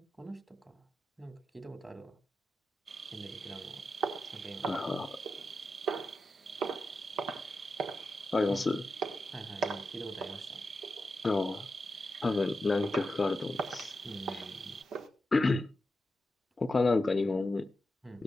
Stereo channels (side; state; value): both; normal; correlation 0.89